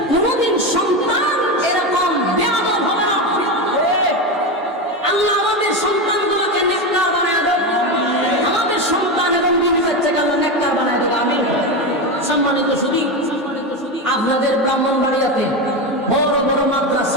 কোনদিন সন্তান এরকম বেয়াদব হবে না। আল্লাহ আমাদের সন্তানগুলোকে নেককার বানায় দেন, আমাদের সন্তান এবং বিবি বাচ্চাকে আল্লাহ নেককার বানায় দেন। আমিন। সম্মানিত সুধী, আপনাদের ব্রাহ্মণবাড়িয়াতে বড় বড়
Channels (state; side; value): normal; both; correlation 0.16